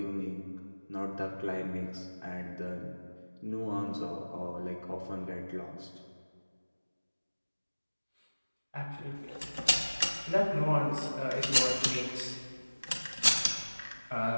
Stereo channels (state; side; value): inverted; both; correlation -1.00